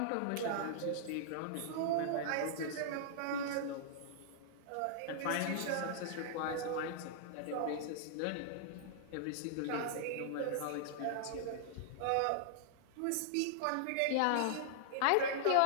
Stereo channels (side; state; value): both; different; correlation -0.01